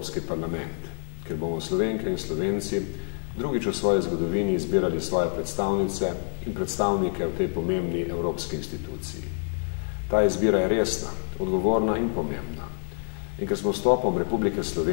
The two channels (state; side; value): silent; right; digital silence